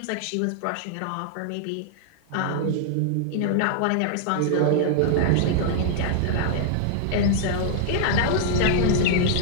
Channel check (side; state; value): both; different; correlation 0.00